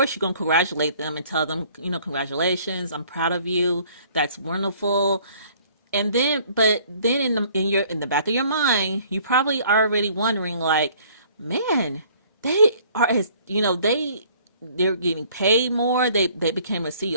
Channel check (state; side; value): inverted; both; correlation -0.57